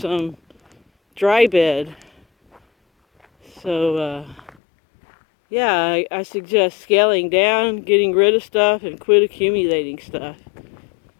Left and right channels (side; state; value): right; drops out; at 4.5 s